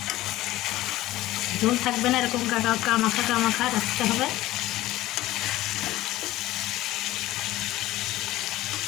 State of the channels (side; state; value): right; quieter; 16.2 dB